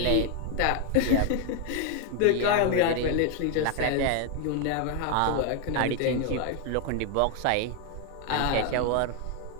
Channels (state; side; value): different; both; correlation 0.01